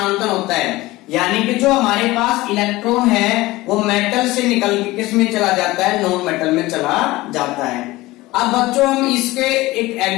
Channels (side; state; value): right; quieter; 19.2 dB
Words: होता है। यानी कि जो हमारे पास इलेक्ट्रॉन है वो मेटल से निकल के किस में चला जाता है, नॉन मेटल में चला जाता है। अब बच्चों हम इसके एक